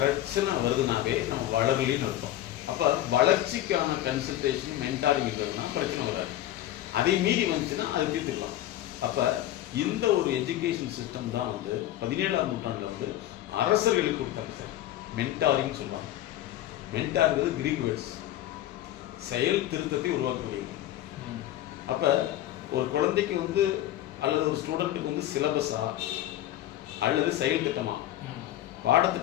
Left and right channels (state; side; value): quieter; right; 13.5 dB